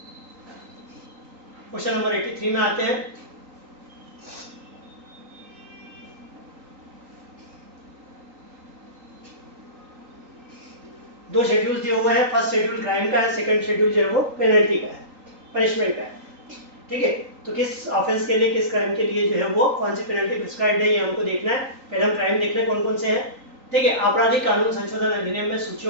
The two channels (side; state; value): left; late; 3.9 ms